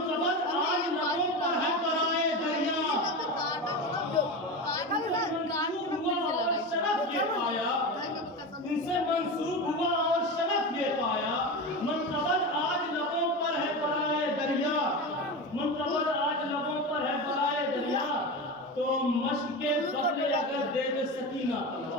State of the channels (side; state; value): both; normal; correlation 0.23